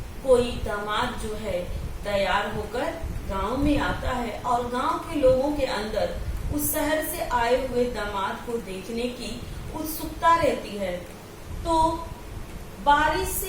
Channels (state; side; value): identical; both; correlation 1.00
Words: कोई दामाद जो है तैयार होकर गांव में आता है और गांव के लोगों के अंदर उस शहर से आए हुए दामाद को देखने की उत्सुकता रहती है। तो बारिश